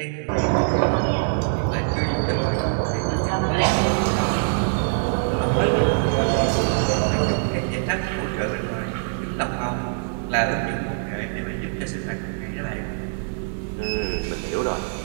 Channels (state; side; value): silent; left; digital silence